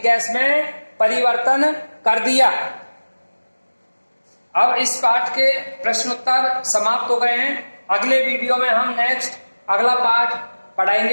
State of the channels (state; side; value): inverted; both; correlation -1.00